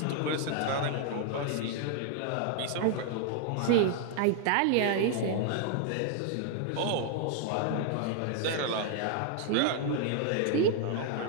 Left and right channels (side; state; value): both; different; correlation 0.00